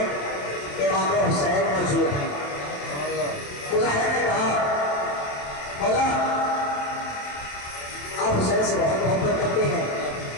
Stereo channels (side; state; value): right; late; 27 ms